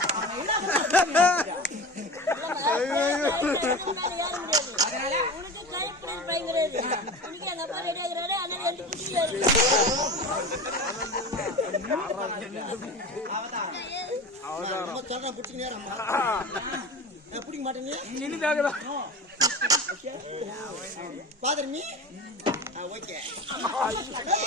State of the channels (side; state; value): both; normal; correlation 0.31